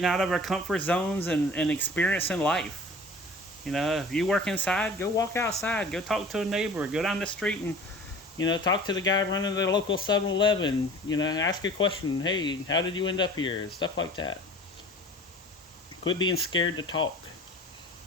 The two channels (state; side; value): normal; both; correlation 0.43